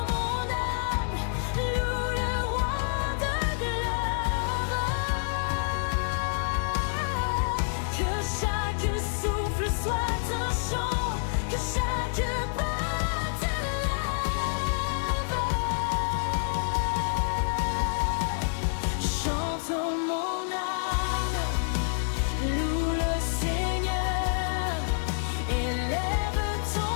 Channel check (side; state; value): right; silent; 59 dB below the other